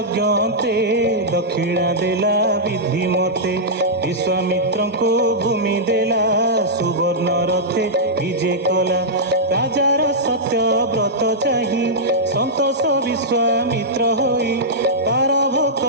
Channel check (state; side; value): normal; both; correlation -0.11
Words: दक्षिणा देला विधि मते विश्वामित्र को भूमि देला सुवर्ण रथे विजे कला राजार सत्य व्रत चाही संतोष विश्वामित्र होई तार